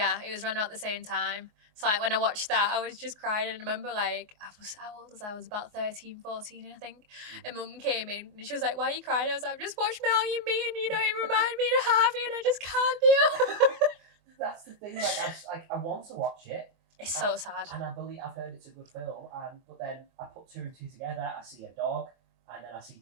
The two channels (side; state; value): left; late; 24 ms